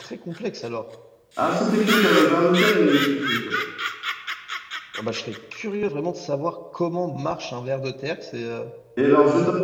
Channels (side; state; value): both; identical; correlation 1.00